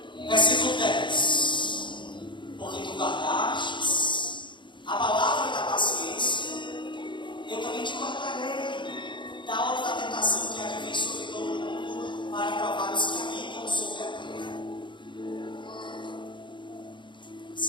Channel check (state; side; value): late; right; 0.23 ms